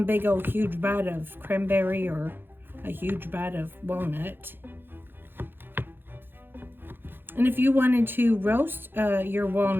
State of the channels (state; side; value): late; left; 0.10 ms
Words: big old huge bite of cranberry or a huge bite of walnut. And if you wanted to roast your